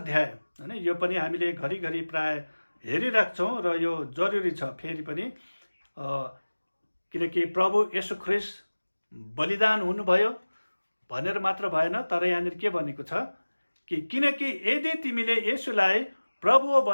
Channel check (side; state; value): both; inverted; correlation -1.00